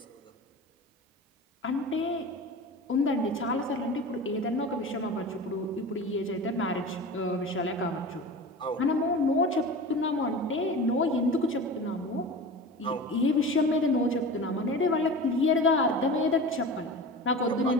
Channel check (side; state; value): both; normal; correlation 0.33